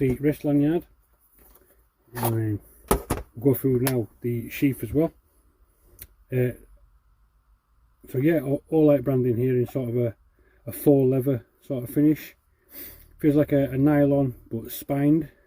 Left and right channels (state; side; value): identical; both; correlation 1.00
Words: wrist lanyard. And then we'll go through now the sheath as well. So yeah, Olight branding here in sort of a faux leather sort of finish. Feels like a nylon but spined.